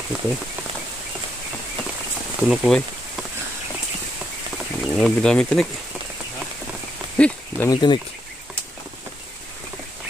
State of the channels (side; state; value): both; normal; correlation 0.78